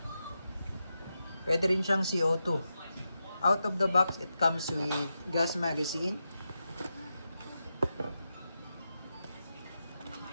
pwede rin siyang CO2. Out of the box, it comes with gas magazine.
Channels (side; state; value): both; inverted; correlation -0.88